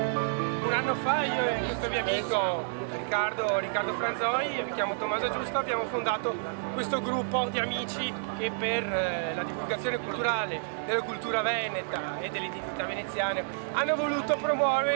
Un anno fa io e questo mio amico Riccardo Franzoi, mi chiamo Tommaso Giusto, abbiamo fondato questo gruppo di amici che per la divulgazione culturale della cultura veneta e dell'identità veneziana hanno voluto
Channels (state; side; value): silent; left; 58 dB below the other